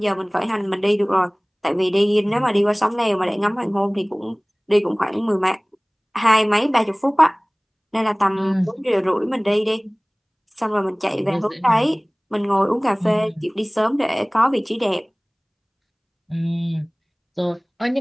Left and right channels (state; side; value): identical; both; correlation 1.00